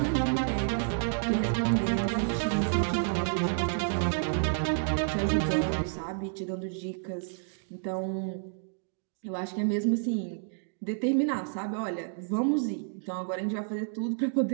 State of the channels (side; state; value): left; silent; digital silence